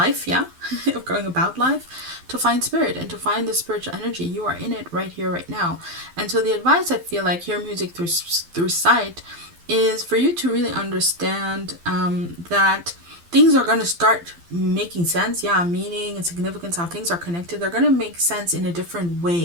yeah, of going about life, to find spirit and to find the spiritual energy. You are in it right here, right now. And so the advice, I feel like, hear music through sight, is for you to really understand that things are going to start making sense. Yeah, meaning and significance, how things are connected. They're going to make sense in a different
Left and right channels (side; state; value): left; late; 12 ms